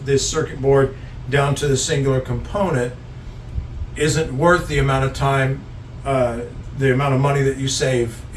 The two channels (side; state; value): both; identical; correlation 1.00